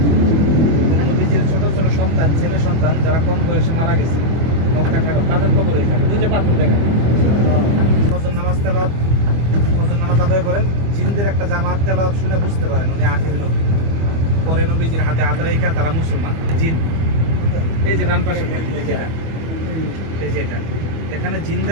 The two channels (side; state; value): left; late; 24 ms